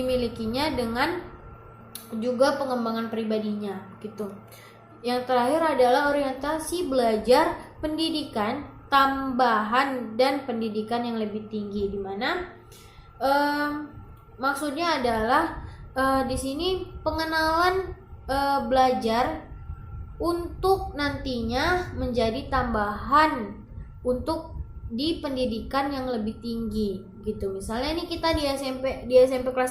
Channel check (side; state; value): both; identical; correlation 1.00